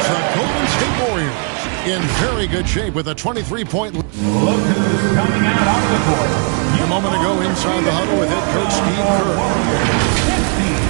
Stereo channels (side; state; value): left; quieter; 39.1 dB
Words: the Golden State Warriors in very good shape with a 23-point lead. Look who's coming out of the court. A moment ago inside the huddle with head coach Steve Kerr.